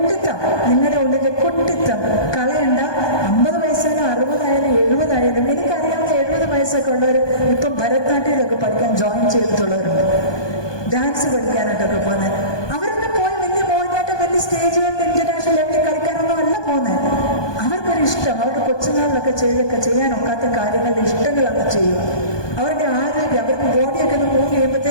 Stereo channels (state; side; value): late; right; 1.2 ms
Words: നിങ്ങളുടെ ഉള്ളിലെ കുട്ടിത്തം കളയണ്ട. 50 വയസ്സായാലും 60 ആയാലും 70 ആയാലും. എനിക്കറിയാവുന്ന 70 വയസ്സൊക്കെ ഉള്ളവർ ഇപ്പം ഭരതനാട്യമൊക്കെ പഠിക്കാൻ ജോയിൻ ചെയ്തിട്ടുള്ളവരുണ്ട്. ഡാൻസ് പഠിക്കാനായിട്ടൊക്കെ പോകുന്നത്. അവരൊക്കെ പോയി വലിയ മോഹിനിയാട്ടം, വലിയ സ്റ്റേജുകളിൽ ഇന്റർനാഷണൽ ലെവലിൽ കളിക്കാനൊന്നും അല്ല പോകുന്നത്. അവർക്കൊരു ഇഷ്ടം, അവരുടെ കൊച്ചുനാളിലൊക്കെ ചെയ്യാനൊക്കാത്ത കാര്യങ്ങളുടെ ഇഷ്ടങ്ങളൊക്കെ ചെയ്യുക. അവരുടെ ആരോഗ്യം, അവരുടെ ബോഡിയൊക്കെ ഒന്ന് മൂവ്